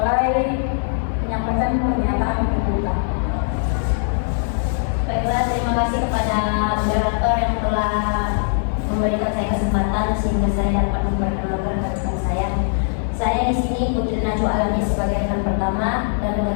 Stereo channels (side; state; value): right; silent; 56 dB below the other